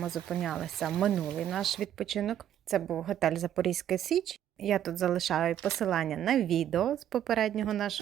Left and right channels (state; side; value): quieter; left; 10.7 dB